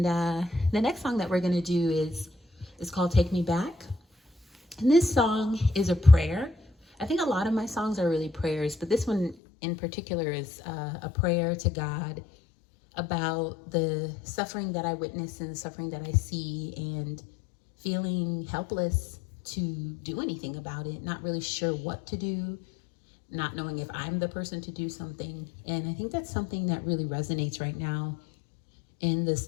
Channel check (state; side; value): drops out; right; at 9.3 s